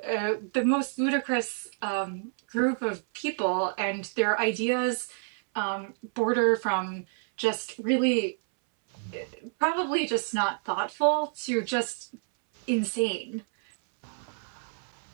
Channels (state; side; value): silent; left; 59 dB below the other